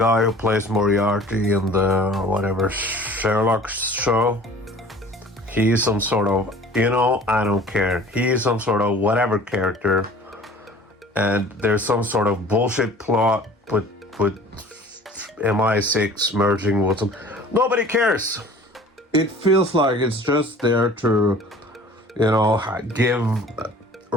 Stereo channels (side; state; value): both; normal; correlation 0.47